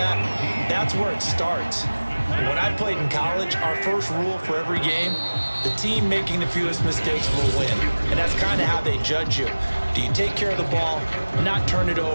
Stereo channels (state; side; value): inverted; both; correlation -1.00